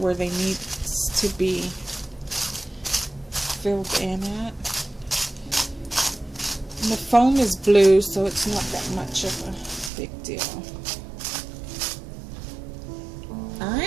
they need to be filled in at. And the foam is blue, so it's not that much of a big deal.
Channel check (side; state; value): left; drops out; at 9.9 s